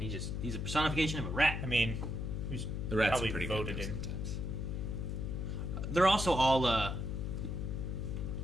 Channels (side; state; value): left; noise; hum, 3 dB below the sound